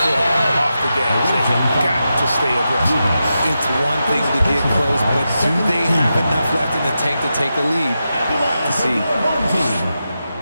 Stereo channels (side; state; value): both; inverted; correlation -0.89